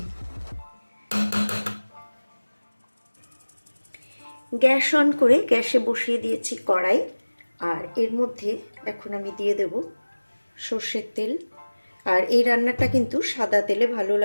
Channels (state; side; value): inverted; both; correlation -1.00